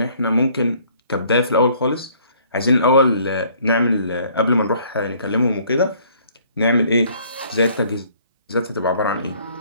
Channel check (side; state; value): both; inverted; correlation -0.60